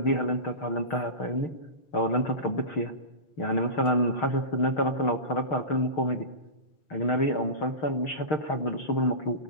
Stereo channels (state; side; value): late; right; 6.5 ms